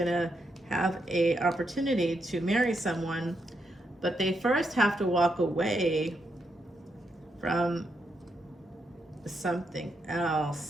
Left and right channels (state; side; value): normal; both; correlation 0.81